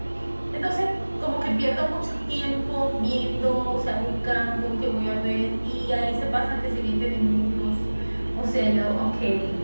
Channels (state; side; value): inverted; both; correlation -1.00